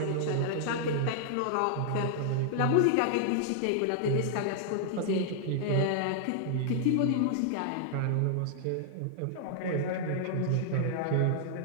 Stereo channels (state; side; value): different; both; correlation -0.01